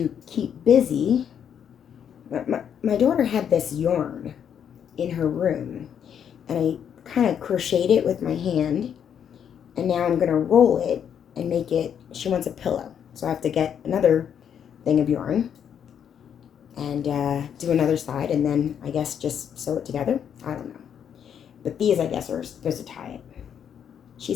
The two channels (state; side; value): quieter; right; 8.5 dB